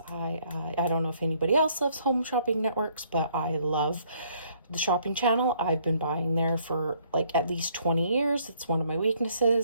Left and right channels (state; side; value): inverted; both; correlation -0.65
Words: I don't know if anybody else loves home shopping networks, but I love the shopping channel. I've been buying there for like at least 20 years. It's one of my